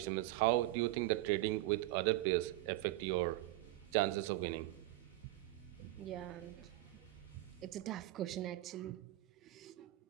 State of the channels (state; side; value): quieter; left; 17.5 dB